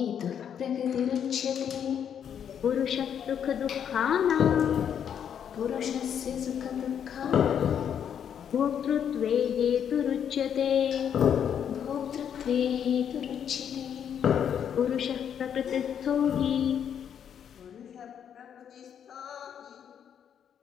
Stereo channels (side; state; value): right; quieter; 8.6 dB